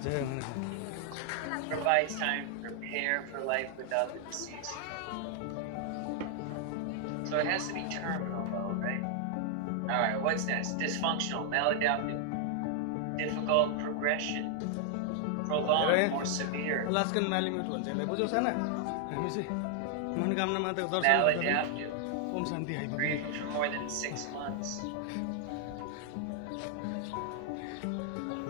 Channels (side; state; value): both; different; correlation 0.00